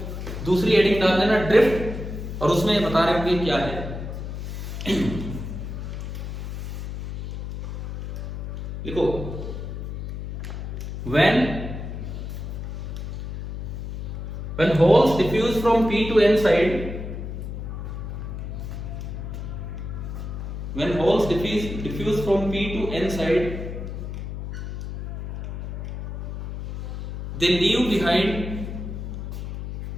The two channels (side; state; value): left; noise; hum, 6 dB below the sound